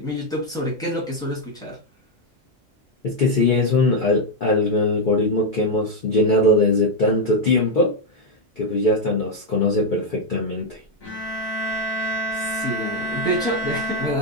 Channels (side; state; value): both; normal; correlation 0.02